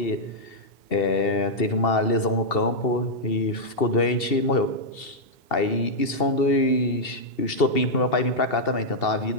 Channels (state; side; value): late; right; 2.7 ms